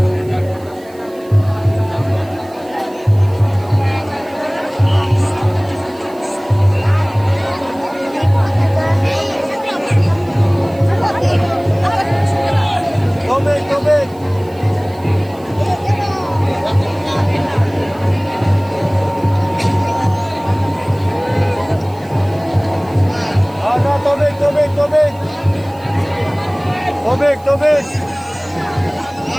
Tubig, tubig. Ada tubig, tubig, tubig. Tubig, tubig.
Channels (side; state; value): right; noise; hiss, 26 dB below the sound